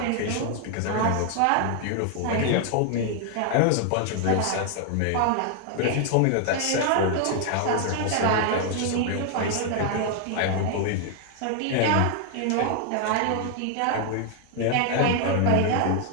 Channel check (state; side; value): different; both; correlation 0.00